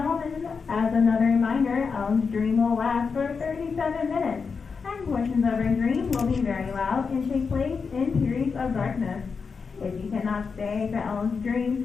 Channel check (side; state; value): right; quieter; 5.3 dB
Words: as another reminder, Ellen's dream will last for 37 minutes, and portions of her dream will be very loud and take place in periods of darkness. If you cannot stay for Ellen's